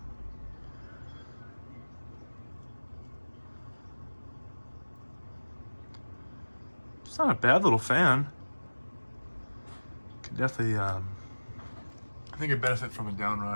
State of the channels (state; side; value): inverted; both; correlation -1.00